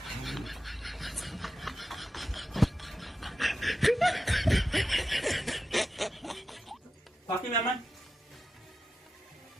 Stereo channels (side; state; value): both; normal; correlation 0.91